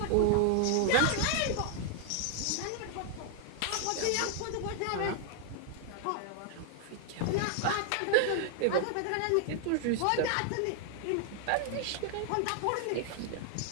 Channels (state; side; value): different; both; correlation 0.00